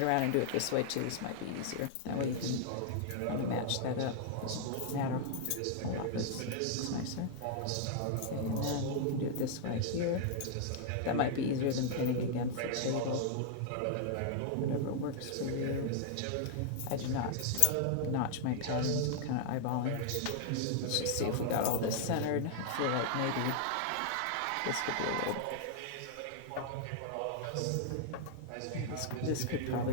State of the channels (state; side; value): different; both; correlation -0.01